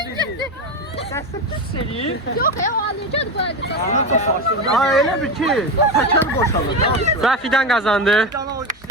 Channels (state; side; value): normal; both; correlation 0.18